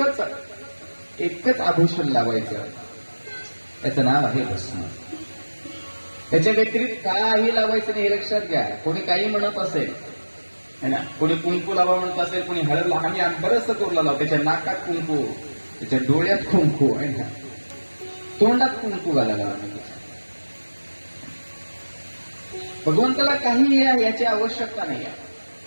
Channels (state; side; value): inverted; both; correlation -1.00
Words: आभूषण लावायचं. त्याचं नाव आहे भस्म. त्याच्या व्यतिरिक्त काही लावायचं नाही, हे लक्षात घ्या. कोणी काही म्हणत असेल है ना, कोणी कुंकू लावा म्हणत असेल, कोणी हळद लावा. आम्ही बरंचसं करू लावतो. त्याच्या नाकात कुंकू, त्याच्या डोळ्यात कुंकू आहे ना, तोंडात कुंकू घालायला. भगवंताला काही याची आवश्यकता नाही